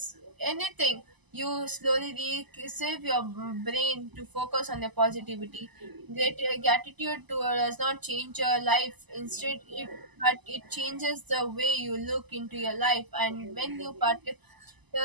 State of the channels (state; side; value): late; left; 1.0 ms